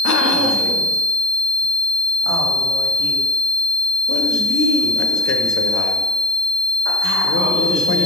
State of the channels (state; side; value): normal; both; correlation 0.34